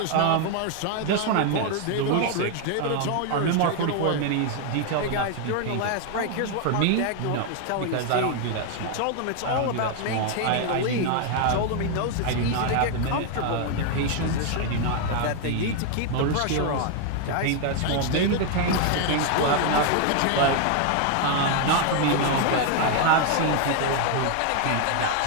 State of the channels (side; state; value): both; different; correlation 0.00